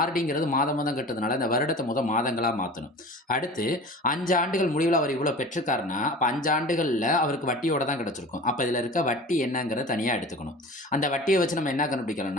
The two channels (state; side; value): normal; both; correlation 0.38